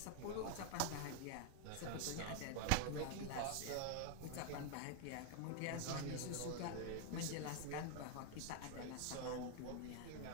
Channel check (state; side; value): different; both; correlation 0.01